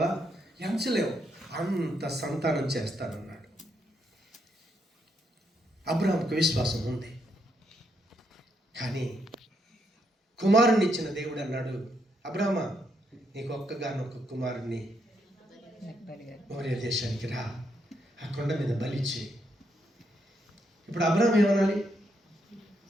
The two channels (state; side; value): normal; both; correlation 0.77